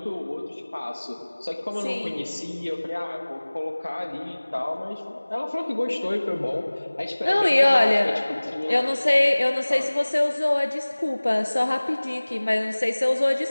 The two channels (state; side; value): inverted; both; correlation -1.00